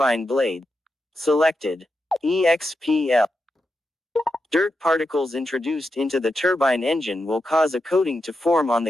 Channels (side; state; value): both; normal; correlation 0.87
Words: blade. Selected. EXPL. Dirt particles introduced into the turbine engine will cause a coating to form on